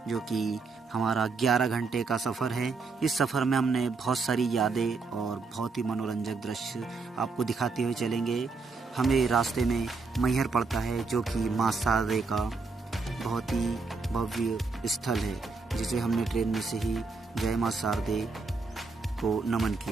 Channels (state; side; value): quieter; left; 4.3 dB